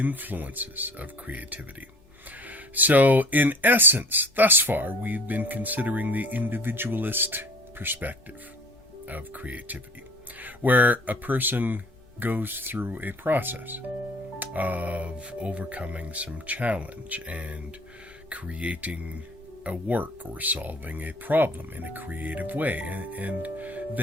of creativity. So, in essence, thus far, we've been considering the individualist perspective of creativity, where a person goes through a process of overcoming some challenge and creating a work or solving a problem in a creative way. And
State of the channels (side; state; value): left; noise; hum, 29 dB below the sound